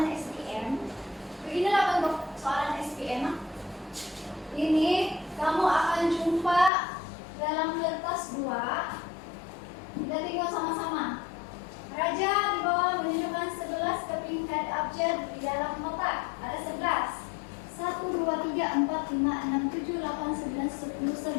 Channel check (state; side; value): drops out; right; at 6.7 s